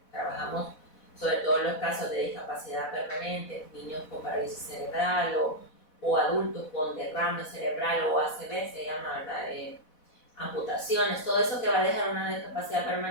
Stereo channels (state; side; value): late; right; 4.1 ms